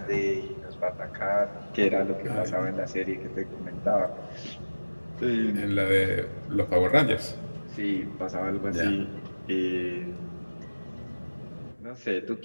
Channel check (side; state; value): both; inverted; correlation -1.00